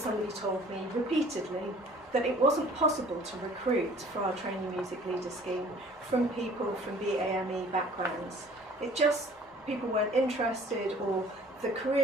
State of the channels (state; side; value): normal; both; correlation 0.52